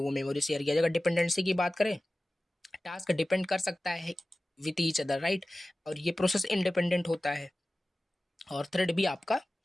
मेमोरी शेयर किया जाएगा। डिपेंडेंसी की बात करें, टास्क डिपेंड कर सकता है विथ ईच अदर, राइट। और ये प्रोसेस इंडिपेंडेंट होता है। और थ्रेड भी आपका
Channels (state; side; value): normal; both; correlation 0.96